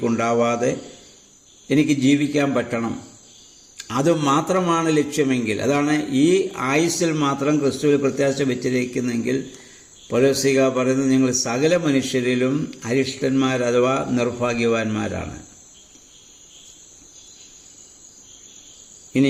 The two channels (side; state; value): both; identical; correlation 1.00